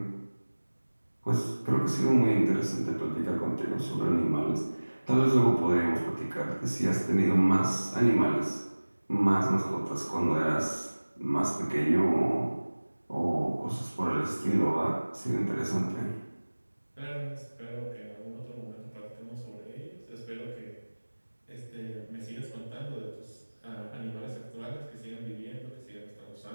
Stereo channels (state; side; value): inverted; both; correlation -1.00